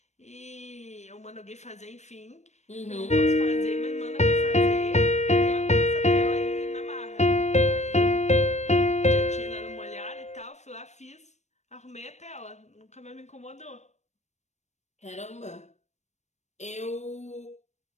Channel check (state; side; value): late; right; 0.33 ms